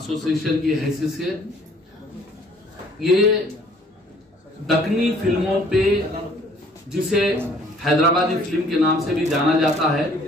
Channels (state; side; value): normal; both; correlation 0.57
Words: की हैसियत से ये दक्कनी फिल्मों पे, जिसे हैदराबादी फिल्म के नाम से भी जाना जाता है,